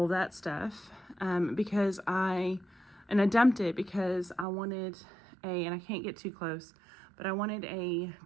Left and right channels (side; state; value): left; drops out; at 4.5 s